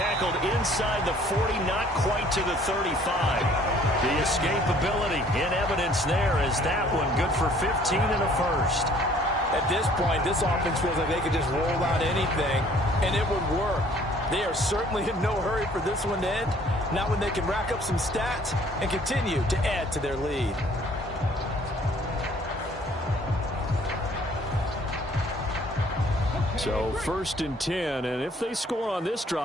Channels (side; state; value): both; normal; correlation 0.57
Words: inside the 40, not quite to the 35. The escapability in evidence there as that one good for 15 and a first. At this point, this offense feels like they could just roll out anything, and it would work. They are certainly in no hurry for this one to end, not when they can rack up some stats and continue to add to their lead. So 1st and 10, and if they score on this